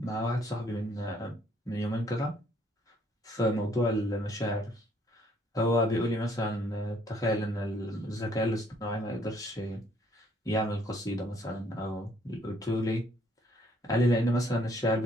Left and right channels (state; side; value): normal; both; correlation 0.65